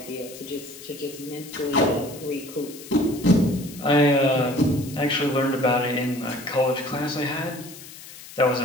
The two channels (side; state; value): left; noise; hiss, 16 dB below the sound